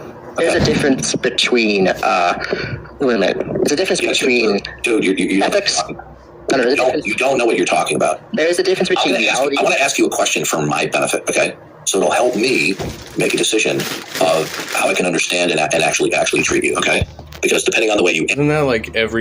There's a difference between, wait a minute. There's a difference between dude, you ethics. No, you don't know what you're talking about. There is a difference between reality. I want to ask you a question for my benefit, okay? So it'll help me make a decision of how I can understand and actually treat you, okay? Because depending on the way you... Isn't that like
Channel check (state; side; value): identical; both; correlation 1.00